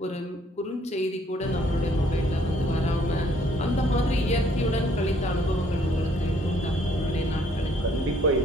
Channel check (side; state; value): both; normal; correlation 0.64